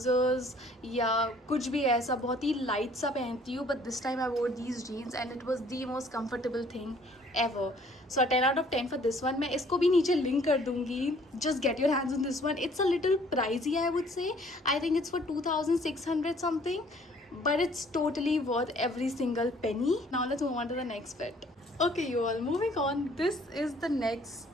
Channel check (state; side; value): normal; both; correlation 0.58